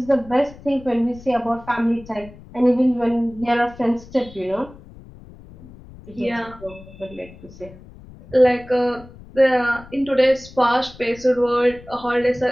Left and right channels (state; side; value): noise; left; rumble, 20 dB below the sound